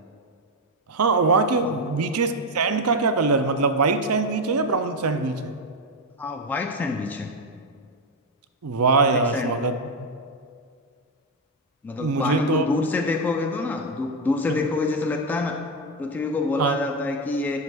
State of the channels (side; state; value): both; normal; correlation 0.06